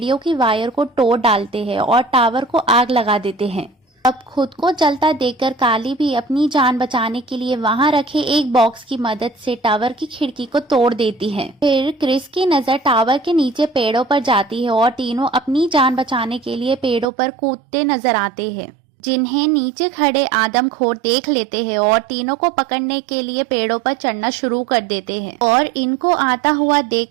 की वायर को तोड़ डालते हैं और टावर को आग लगा देते हैं। अब खुद को जलता देखकर काली भी अपनी जान बचाने के लिए वहां रखे एक बॉक्स की मदद से टावर की खिड़की को तोड़ देती है। फिर क्रिस की नजर टावर के नीचे पेड़ों पर जाती है और तीनों अपनी जान बचाने के लिए पेड़ों पर कूदते नजर आते हैं, जिन्हें नीचे खड़े आदमखोर देख लेते हैं और तीनों को पकड़ने के लिए पेड़ों पर चढ़ना शुरू कर देते हैं और इनको आता हुआ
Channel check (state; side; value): drops out; left; at 17.1 s